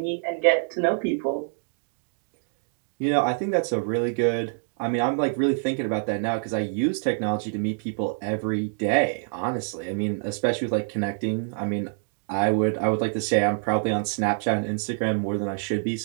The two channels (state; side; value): silent; left; 61 dB below the other